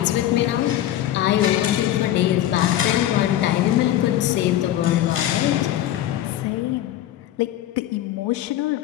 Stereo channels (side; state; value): right; quieter; 12.7 dB